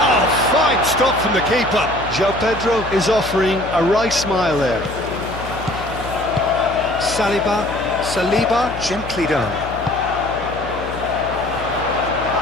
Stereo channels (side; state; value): left; noise; hum, 12 dB below the sound